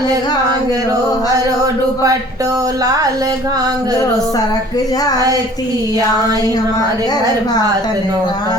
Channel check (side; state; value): both; normal; correlation 0.50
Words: घांगरो, हरो दुपट्टो लाल घांगरो, सरक जाती आए हमारे घर भातन